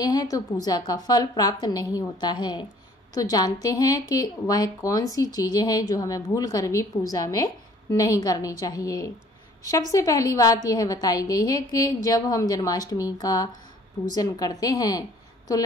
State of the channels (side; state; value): both; normal; correlation 0.56